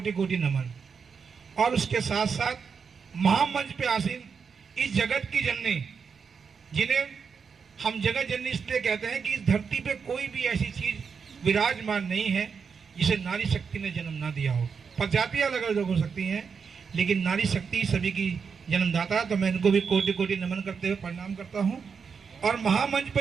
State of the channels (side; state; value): left; quieter; 6.0 dB